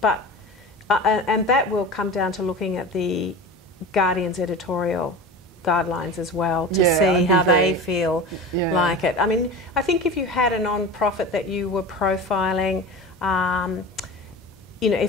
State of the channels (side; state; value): both; normal; correlation 0.32